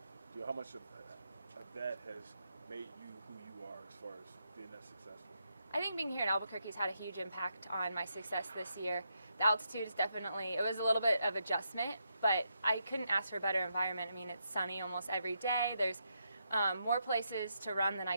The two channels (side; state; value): both; inverted; correlation -0.81